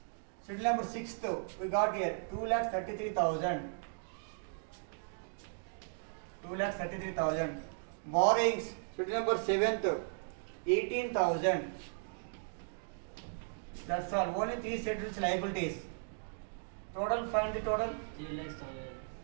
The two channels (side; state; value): left; silent; digital silence